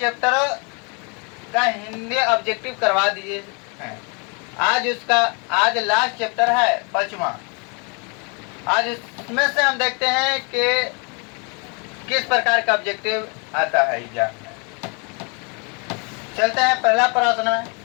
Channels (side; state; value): right; quieter; 33.8 dB